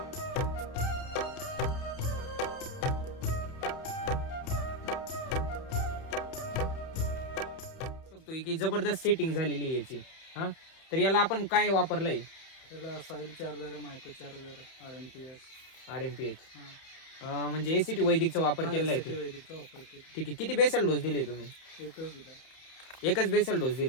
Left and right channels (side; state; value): right; late; 31 ms